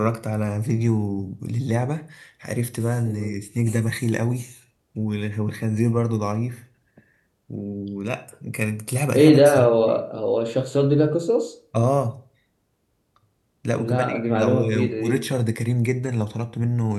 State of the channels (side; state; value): both; identical; correlation 1.00